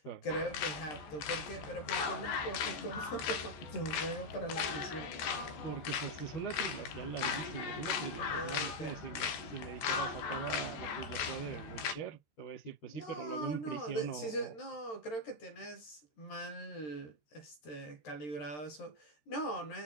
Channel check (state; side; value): late; right; 14 ms